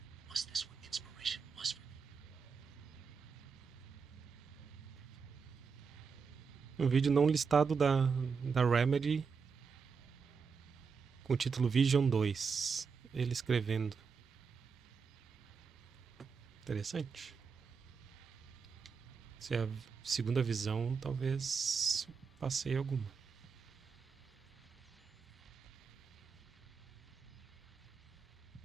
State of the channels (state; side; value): quieter; left; 5.6 dB